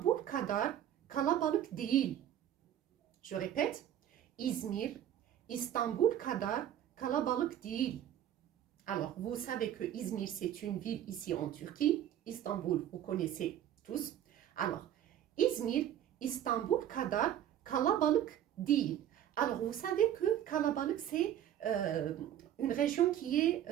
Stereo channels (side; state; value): left; quieter; 10.9 dB